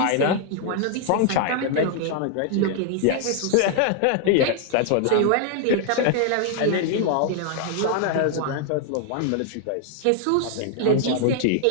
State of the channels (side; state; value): both; different; correlation 0.00